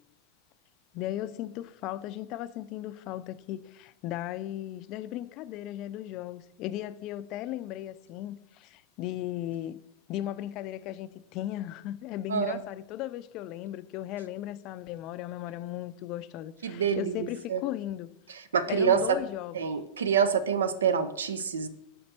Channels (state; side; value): normal; both; correlation -0.19